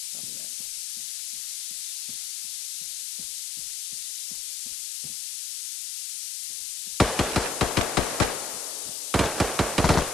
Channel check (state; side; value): noise; left; hiss, 2 dB below the sound